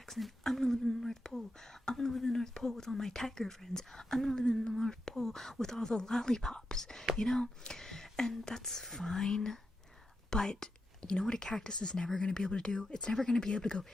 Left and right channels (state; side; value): normal; both; correlation 0.87